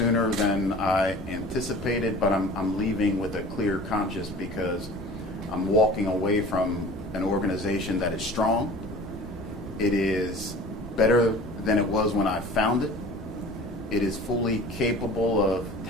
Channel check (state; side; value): normal; both; correlation 0.43